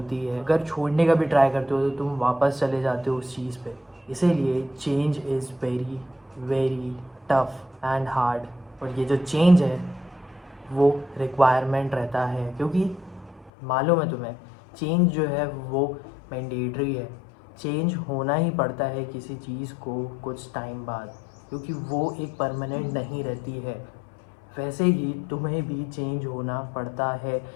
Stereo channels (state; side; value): drops out; right; at 13.5 s